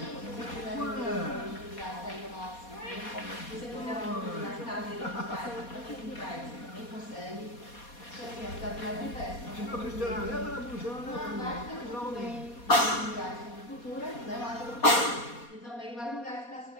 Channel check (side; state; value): right; late; 4.2 ms